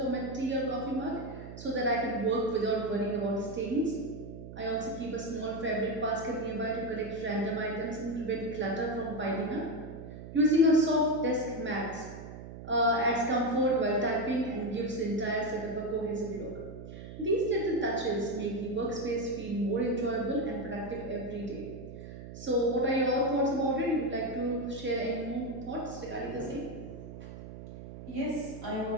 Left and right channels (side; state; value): right; noise; hum, 12 dB below the sound